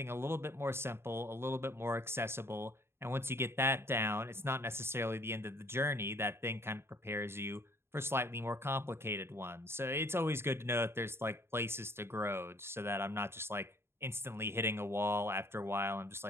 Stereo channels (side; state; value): left; late; 0.12 ms